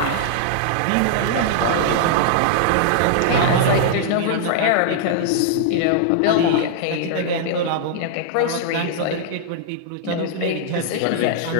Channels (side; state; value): both; different; correlation -0.01